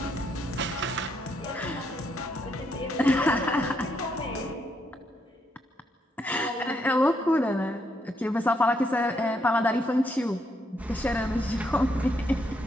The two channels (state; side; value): normal; both; correlation 0.76